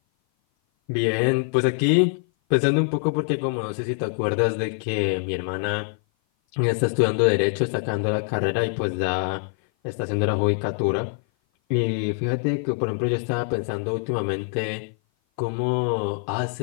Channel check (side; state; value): right; silent; 56 dB below the other